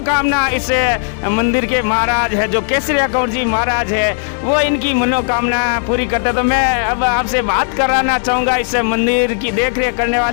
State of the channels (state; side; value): silent; right; 68 dB below the other